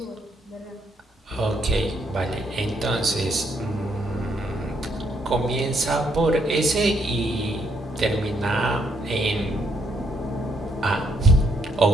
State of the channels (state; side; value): normal; both; correlation 0.73